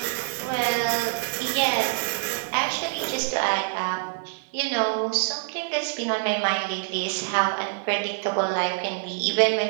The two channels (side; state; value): left; silent; 61 dB below the other